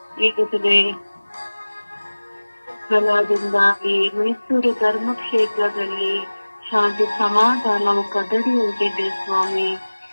ಈಗಲೇ ಫಲದಿಂದಾಗಿ ಮೈಸೂರು ಧರ್ಮಕ್ಷೇತ್ರದಲ್ಲಿ ಶಾಂತಿ ಸಮಾಧಾನವು ಕದಡಿ ಹೋಗಿದೆ ಸ್ವಾಮಿ.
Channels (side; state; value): both; inverted; correlation -1.00